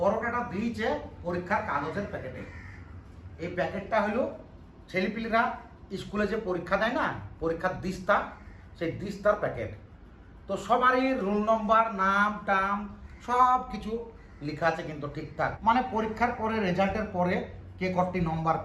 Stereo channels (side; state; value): both; identical; correlation 1.00